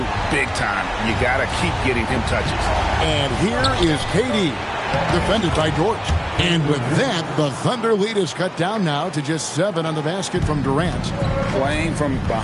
big time. You got to keep getting him touches. And here is KD, defended by Dort. And with that, the Thunder lead is cut down now to just 7 on the basket from Durant. Playing from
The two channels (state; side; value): identical; both; correlation 1.00